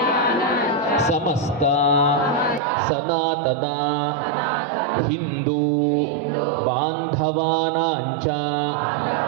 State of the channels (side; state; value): left; drops out; at 2.6 s